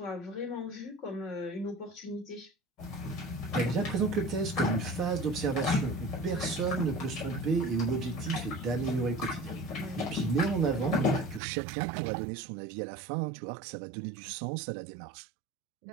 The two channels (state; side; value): drops out; left; at 11.4 s